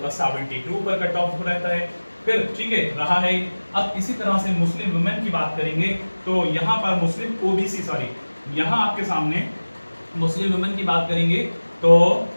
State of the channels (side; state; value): both; inverted; correlation -1.00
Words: का 72 पर कट ऑफ रहता है। फिर ठीक है रहा है। अब इसी तरह से मुस्लिम वुमेन की बात करेंगे तो यहाँ पर मुस्लिम ओबीसी यहाँ आपके सामने मुस्लिम वुमेन की बात करेंगे तो